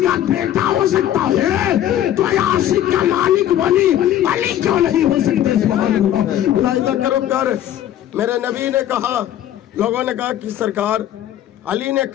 बेटा हो सकता है तो आशिक का मालिक वली अली क्यों नहीं हो सकते। सुभान अल्लाह करो प्यार। मेरे नबी ने कहा, लोगों ने कहा कि सरकार अली ने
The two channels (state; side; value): quieter; right; 11.8 dB